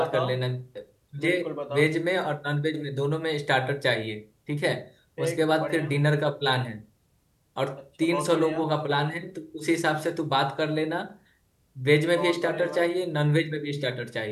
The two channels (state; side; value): identical; both; correlation 1.00